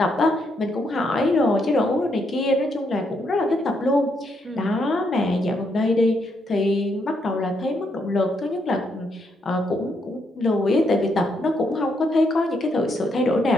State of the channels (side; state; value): both; normal; correlation 0.77